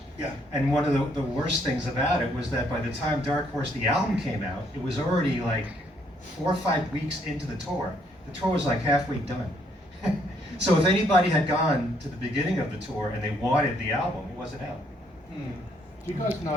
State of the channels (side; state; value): both; normal; correlation 0.70